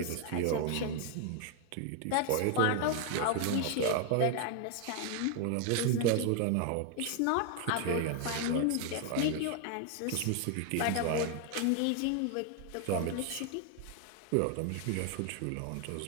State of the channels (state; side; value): different; both; correlation 0.01